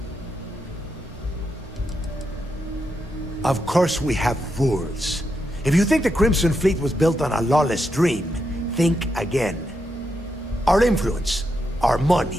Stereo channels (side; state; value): both; normal; correlation 0.83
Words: Of course we have rules. If you think the Crimson Fleet was built on a lawless dream, think again. Our influence, our